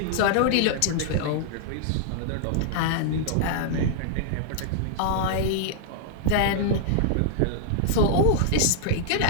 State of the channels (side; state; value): both; different; correlation -0.01